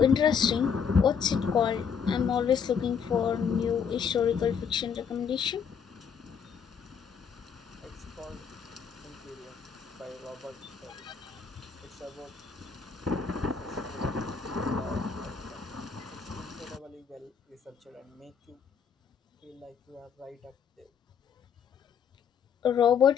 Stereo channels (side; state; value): right; quieter; 6.9 dB